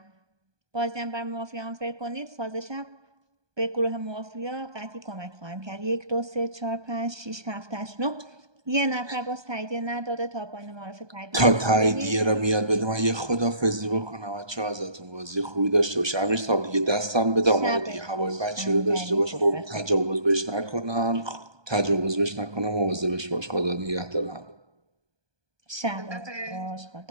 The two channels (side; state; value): left; late; 1.2 ms